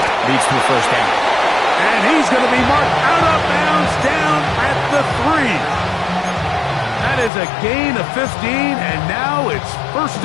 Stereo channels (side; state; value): right; drops out; at 7.3 s